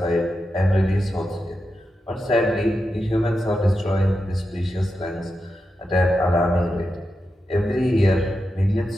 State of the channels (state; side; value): normal; both; correlation 0.89